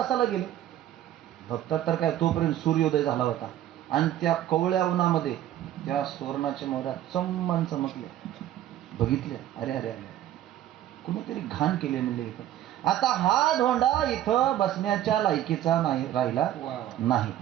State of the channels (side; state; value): left; quieter; 12.4 dB